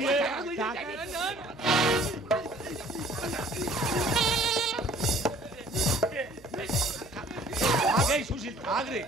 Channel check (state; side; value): noise; right; hum, 24 dB below the sound